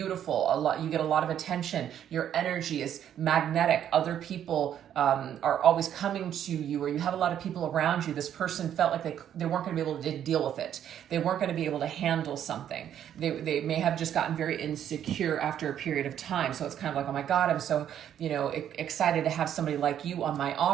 You get a lot of attention. Your energy is magnetic. Other people are always coming to you, or you have a lot of people around you. This person felt like they weren't going to be able to deal with it. They weren't going to be able to handle something. They may have just gotten very insecure after a period of time. So it's kind of like, oh my God, I'm so excited to have somebody like you on my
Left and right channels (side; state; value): left; quieter; 10.0 dB